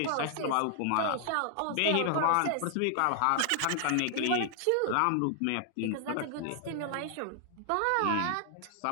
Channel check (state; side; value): different; both; correlation 0.00